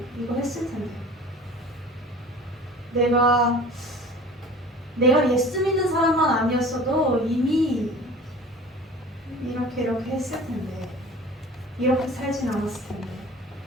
이거 했을 텐데. 내가 예수 믿는 사람만 아니었어도 이미 이렇게 했을 텐데. 이렇게 살진 않았을 텐데.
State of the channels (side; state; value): both; normal; correlation 0.42